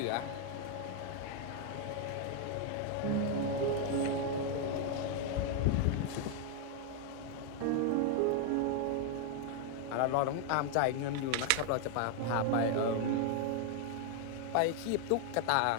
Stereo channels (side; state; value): both; different; correlation 0.00